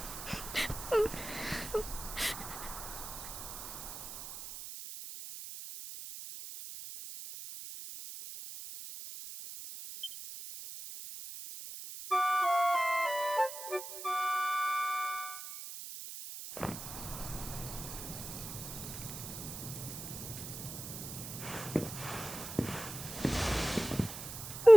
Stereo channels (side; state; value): right; noise; hiss, 9 dB below the sound